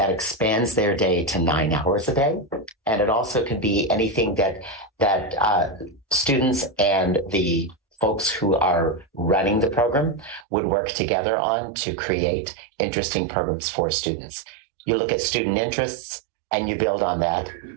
expands their day to 9 hours a day. And it also could be anything that students and the folks who are running the program would work together on to create interesting programs for students. You look at student interests and you build on that.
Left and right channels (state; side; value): drops out; left; at 10.5 s